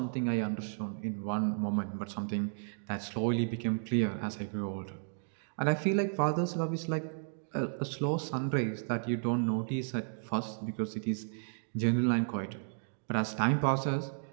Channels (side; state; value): left; silent; digital silence